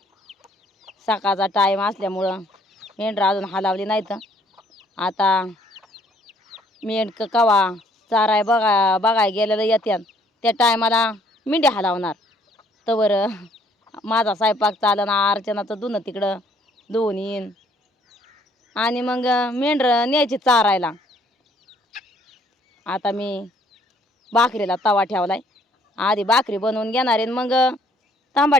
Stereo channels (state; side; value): normal; both; correlation 0.63